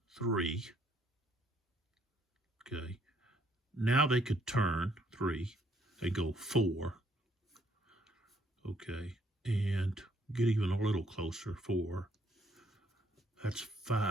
3. Okay. Now they could turn 3. They go 4. Okay. And get even a little closer. 4. That's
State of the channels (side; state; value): both; normal; correlation 0.68